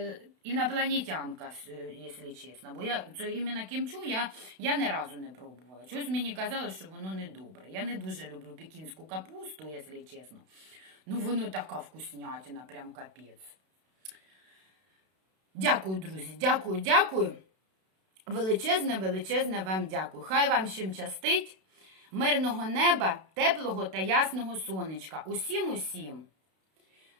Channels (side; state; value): left; late; 32 ms